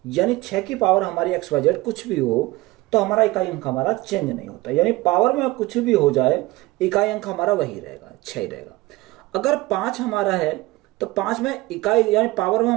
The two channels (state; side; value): quieter; left; 19.9 dB